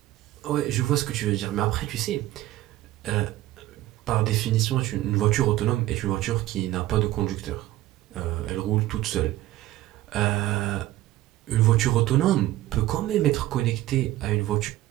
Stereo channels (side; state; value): left; quieter; 15.5 dB